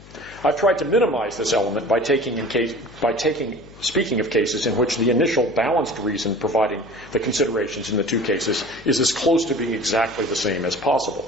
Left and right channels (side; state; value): left; noise; hum, 21 dB below the sound